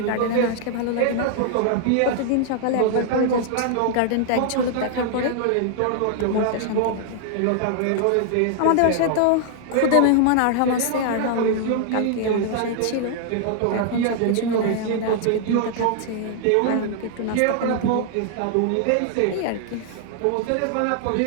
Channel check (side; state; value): both; different; correlation 0.00